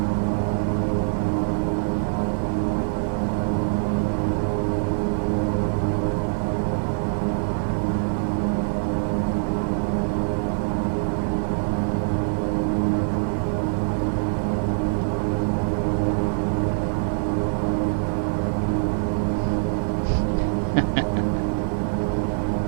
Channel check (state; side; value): silent; left; 63 dB below the other